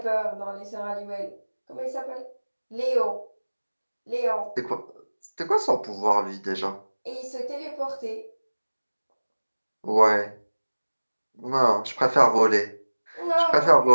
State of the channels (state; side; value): inverted; both; correlation -1.00